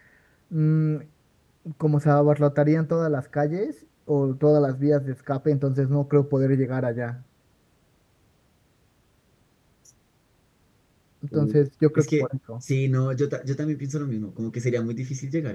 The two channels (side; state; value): both; identical; correlation 1.00